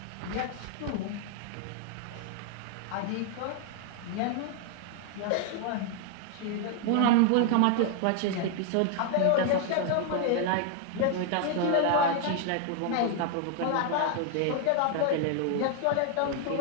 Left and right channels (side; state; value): both; different; correlation 0.00